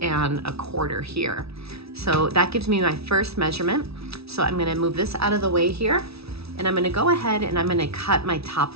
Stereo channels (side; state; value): left; late; 0.77 ms